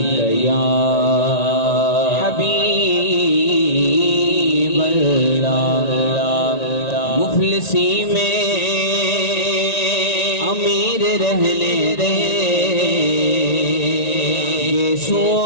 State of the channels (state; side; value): late; right; 1.9 ms